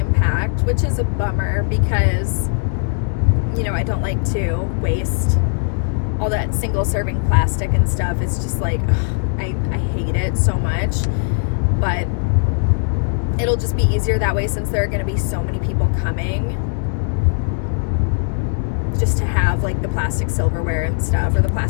which is a bummer because, you know, I don't like to waste all that single serving plastic and stuff. It's just like, I hate it so much, but it'll just be easier that way since there are going to be so many people coming just to have like the plastic silverware and stuff, or the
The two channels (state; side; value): silent; right; digital silence